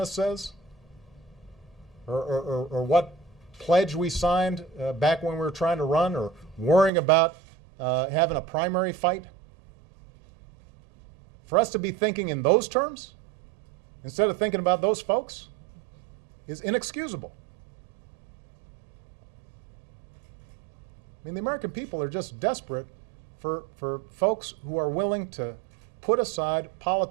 says or what pledge we signed back when we were trying to run, or worrying about having a primary fight, for us to be thinking in those terms instead of thinking about those folks is inexcusable. I mean, the American people are just desperate for folks who are willing to put aside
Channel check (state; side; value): drops out; left; at 6.9 s